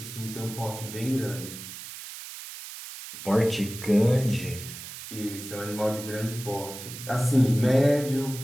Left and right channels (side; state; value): right; noise; hiss, 11 dB below the sound